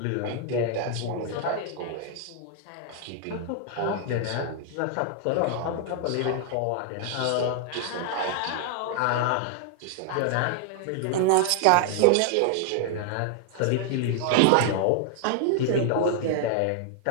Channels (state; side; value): different; both; correlation 0.00